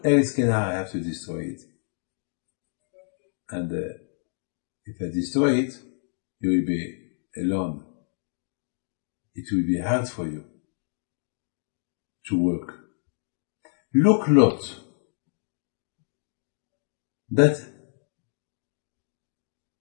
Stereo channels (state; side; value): silent; right; digital silence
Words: Eretz Canaan, I have to destroy it. And if I destroy it, you will be alone. It will be hard for you to work. Look, Lot, that